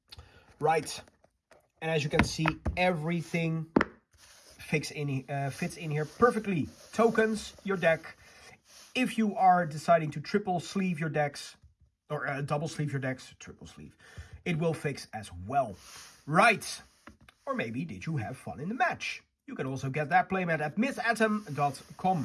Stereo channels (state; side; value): identical; both; correlation 1.00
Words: Right. And as you can see, everything fits in here perfectly. Tokens, your deck. If you are deciding to triple sleeve your decks, or double sleeve your decks, triple sleeve, it will fix as well. Right. Or maybe did you have fun in the match? You can also get that playmat at